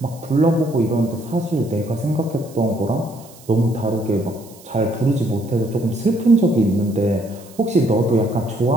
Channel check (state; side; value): noise; right; hiss, 23 dB below the sound